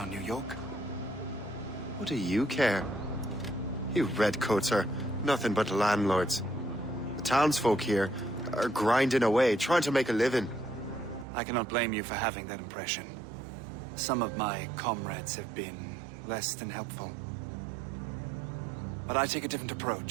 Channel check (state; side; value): drops out; left; at 11.2 s